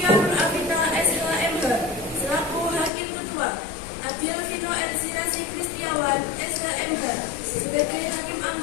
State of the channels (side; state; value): right; drops out; at 2.9 s